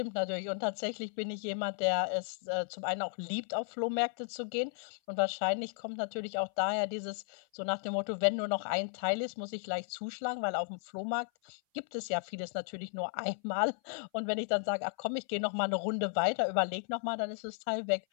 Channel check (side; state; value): right; silent; 55 dB below the other